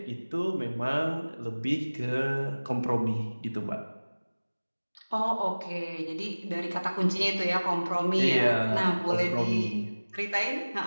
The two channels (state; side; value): inverted; both; correlation -1.00